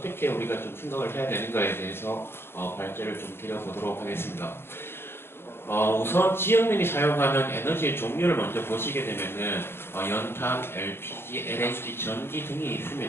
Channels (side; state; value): right; late; 0.11 ms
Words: 우리가 좀 생각을 해야 되는가에 대해서 발제를 좀 드려보도록 하겠습니다. 우선 지역민이 사용하는 에너지의 종류를 먼저 보시게 되면은 연탄, LPG, LNG, 전기 등이